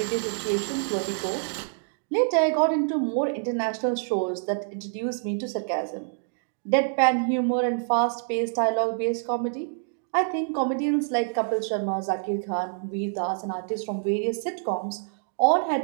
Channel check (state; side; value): silent; left; digital silence